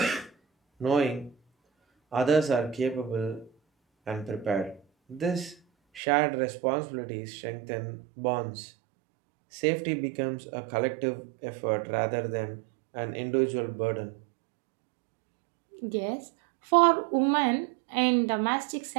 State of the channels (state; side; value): drops out; left; at 6.0 s